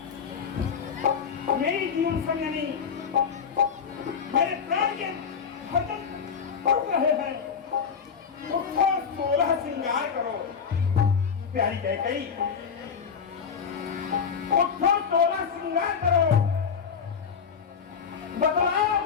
मेरी जीवन संगनी, मेरे प्राण के धड़कन उठ रहे हैं। उठो 16 श्रृंगार करो प्यारी कैकेयी, उठो 16 श्रृंगार करो। बतलाओ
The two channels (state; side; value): quieter; right; 6.5 dB